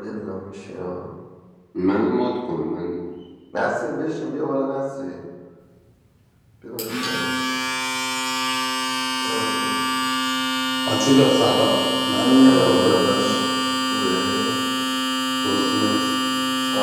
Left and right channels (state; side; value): identical; both; correlation 1.00